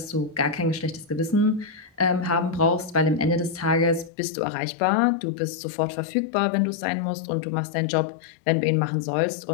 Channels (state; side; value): drops out; right; at 4.1 s